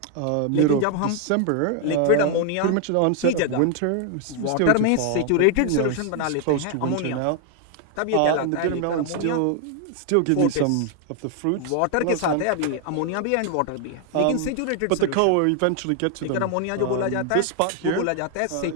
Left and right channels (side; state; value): both; different; correlation 0.00